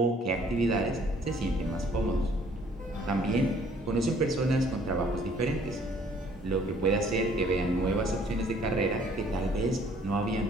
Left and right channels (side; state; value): both; normal; correlation 0.59